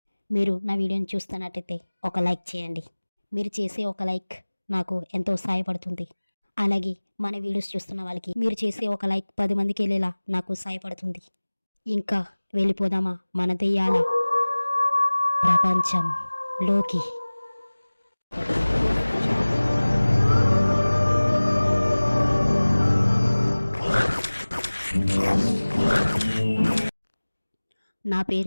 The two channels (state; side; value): inverted; both; correlation -1.00